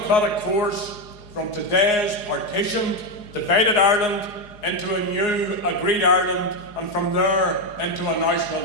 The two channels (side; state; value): right; late; 4.8 ms